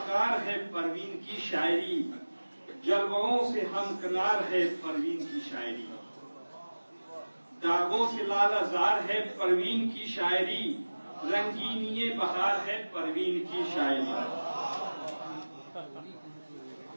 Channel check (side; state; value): both; inverted; correlation -1.00